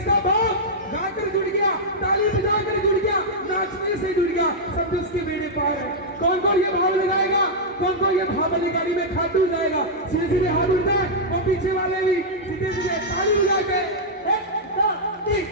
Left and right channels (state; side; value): normal; both; correlation -0.07